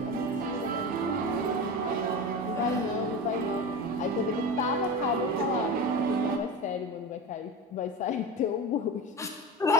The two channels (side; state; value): both; normal; correlation 0.25